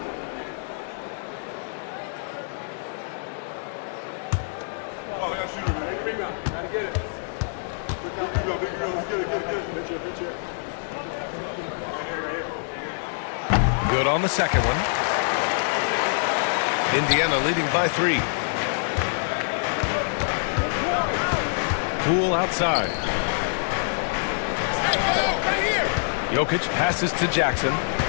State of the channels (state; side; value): silent; right; digital silence